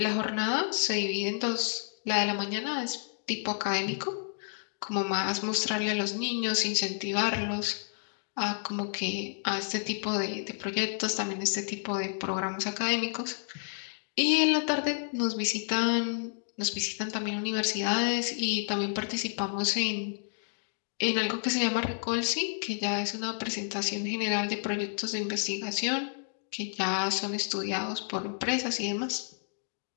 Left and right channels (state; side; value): silent; right; digital silence